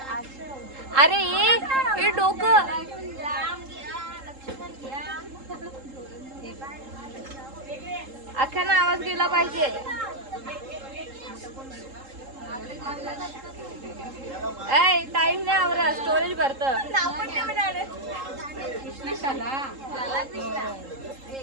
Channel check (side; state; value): left; late; 3.7 ms